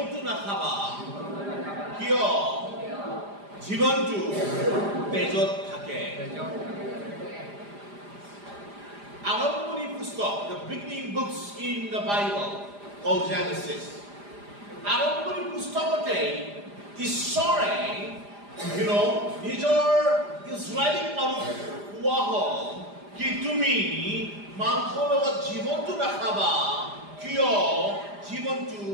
নাখাবা কিয় জীৱনটো তেজত থাকে। আৰম্ভণি পুস্তক, the beginning books in the Bible called Genesis. আৰম্ভণি পুস্তকতে ঈশ্বৰে নিজৰ ইজৰাইলী মানুহ কোৱা হ'ল কি তুমি মাংসৰ লগত জীৱনটো নাখাবা কিয় জীৱনটো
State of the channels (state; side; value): late; left; 4.9 ms